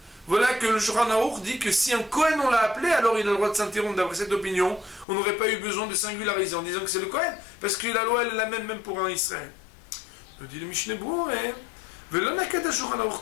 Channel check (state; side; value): drops out; right; at 5.1 s